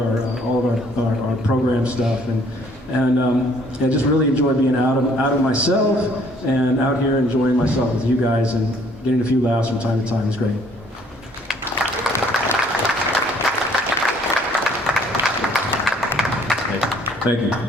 our program stuff, and I just really enjoy being out of myself and out here enjoying myself with you guys and getting a few laughs from time to time is great. Thank you.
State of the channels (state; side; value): normal; both; correlation 0.60